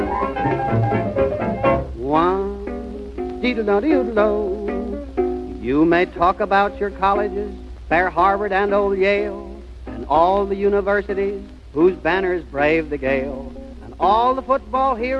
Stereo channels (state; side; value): identical; both; correlation 1.00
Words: One, dee-do-do-dee-do. You may talk about your colleges, fair Harvard and old Yale, and all the universities whose banners brave the gale, and all the football